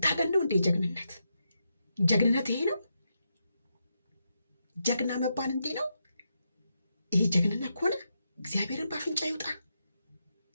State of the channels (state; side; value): inverted; both; correlation -0.84